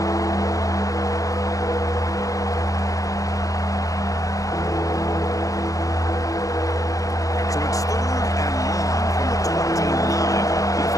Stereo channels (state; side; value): late; right; 0.16 ms